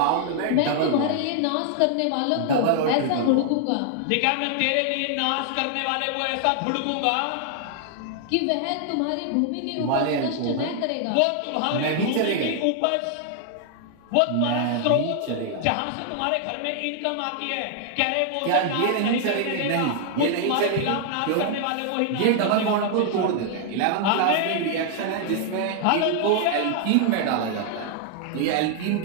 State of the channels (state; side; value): different; both; correlation 0.00